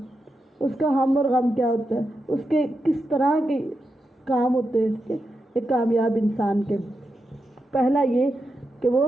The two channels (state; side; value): normal; both; correlation 0.87